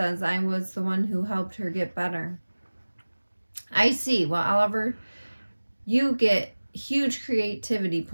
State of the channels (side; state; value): both; inverted; correlation -1.00